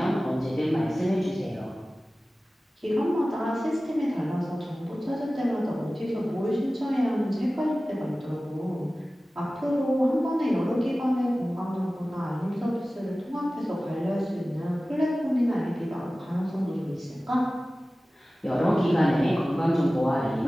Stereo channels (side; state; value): both; normal; correlation 0.97